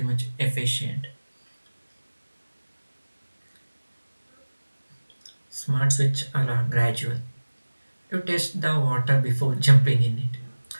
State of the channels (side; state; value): both; inverted; correlation -1.00